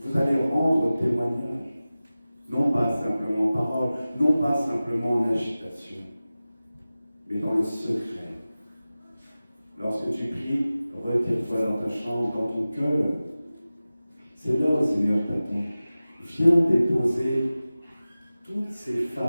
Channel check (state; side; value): inverted; both; correlation -0.96